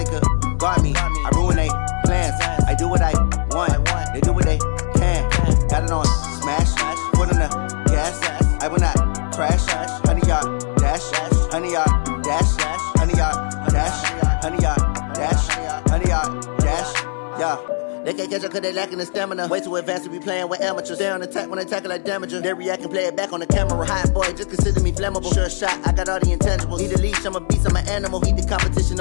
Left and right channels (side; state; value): right; silent; 59 dB below the other